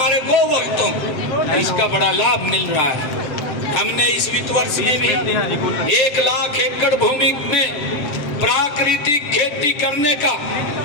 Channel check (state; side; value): late; right; 7.6 ms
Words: गोवंशों को इसका बड़ा लाभ मिल रहा है। हमने इस वित्त वर्ष में भी 1 लाख एकड़ भूमि में प्राकृतिक खेती करने का